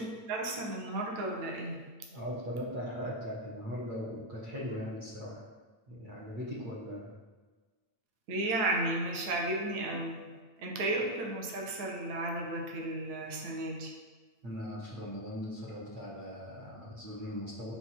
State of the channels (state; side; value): late; left; 8.8 ms